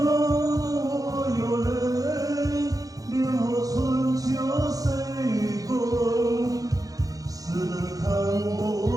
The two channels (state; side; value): late; left; 0.17 ms